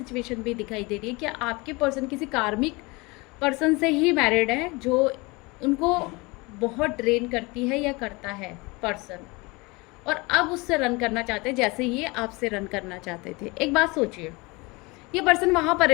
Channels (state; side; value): quieter; right; 25.3 dB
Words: भी दिखाई दे रही है कि आपके पर्सन किसी कार्मिक पर्सन से ही मैरिड है, जो उनको बहुत ड्रेन करती है या करता है पर्सन, और अब उससे रन करना चाहते हैं जैसे ये आपसे रन करना चाहते थे। एक बात सोचिए, ये पर्सन वहाँ